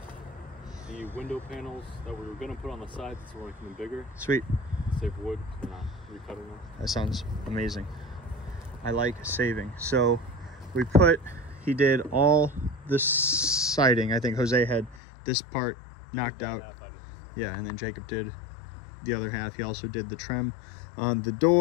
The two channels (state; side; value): drops out; right; at 15.0 s